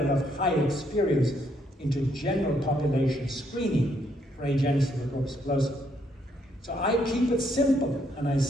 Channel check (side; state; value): both; normal; correlation 0.72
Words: of high experience into general population screening for agenesis of corpus callosum. So I keep it simple, and I